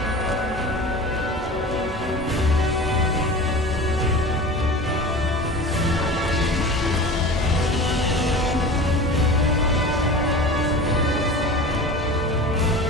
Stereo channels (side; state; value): both; normal; correlation 0.35